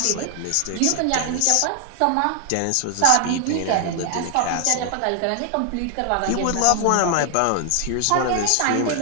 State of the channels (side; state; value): both; different; correlation 0.00